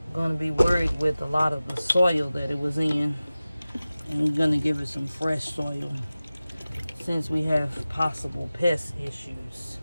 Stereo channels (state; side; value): inverted; both; correlation -0.96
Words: going to be worried with a lot of the soil that it was in. And we're going to give it some fresh soil since we have possible pest issues.